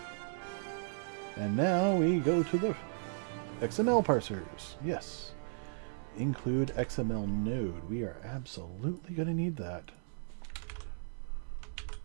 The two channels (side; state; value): left; silent; 54 dB below the other